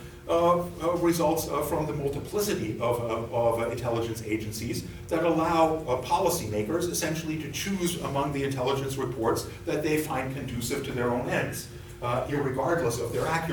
results from the multiplicity of intelligence agencies that allow policymakers essentially to choose among the intelligence reports that they find conducive to their own ends, irregardless of their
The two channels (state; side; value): identical; both; correlation 1.00